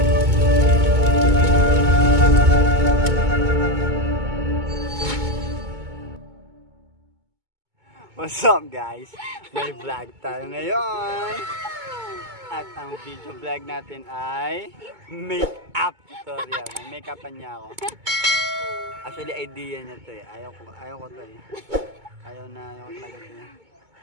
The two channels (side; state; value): left; late; 2.2 ms